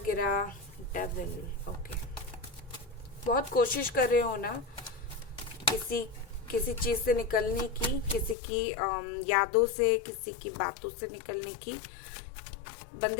डेविल। ओके, बहुत कोशिश कर रहे हो ना किसी चीज से निकलने की, किसी की यादों से, किसी की बातों से निकलने की,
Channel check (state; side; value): drops out; right; at 8.3 s